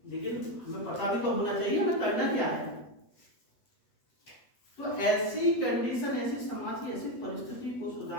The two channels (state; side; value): late; right; 8.1 ms